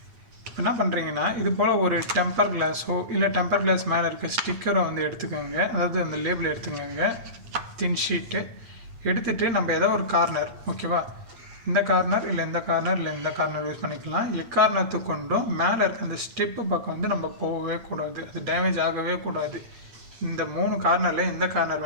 இப்போ என்ன பண்ணுறீங்கன்னா, இது போல் ஒரு டெம்பர் கிளாஸோ இல்லை டெம்பர் கிளாஸ் மேலே இருக்க ஸ்டிக்கரை வந்து எடுத்துக்கோங்க. அதாவது அந்த லேபிள் எடுத்துக்கோங்க, தின் ஷீட்டு எடுத்துகிட்டு நம்ம ஏதோ ஒரு கார்னர், ஓகேவா, இந்த கார்னர் இல்லை இந்த கார்னர் இல்லை இந்த கார்னர் யூஸ் பண்ணிக்கலாம். எக்காரணத்துக்கு கொண்டும் மேலே இருக்க அந்த ஸ்டெப்பு பக்கம் வந்து நம்ம போகவே கூடாது, அது டேமேஜ் ஆகவே கூடாது. இந்த 3 கார்னரில் எந்த கார்னர்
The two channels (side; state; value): left; late; 8.7 ms